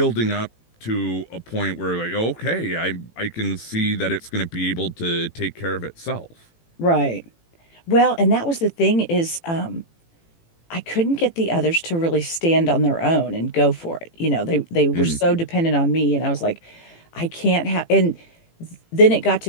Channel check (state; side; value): late; right; 18 ms